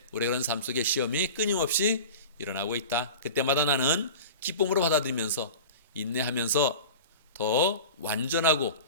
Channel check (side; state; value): both; inverted; correlation -0.34